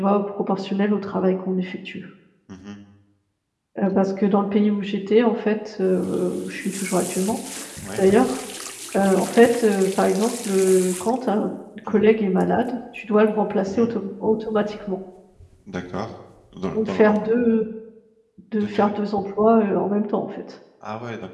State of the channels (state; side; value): identical; both; correlation 1.00